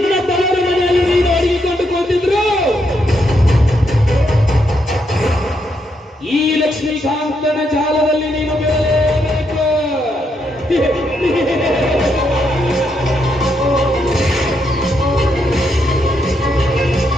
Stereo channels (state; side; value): normal; both; correlation 0.78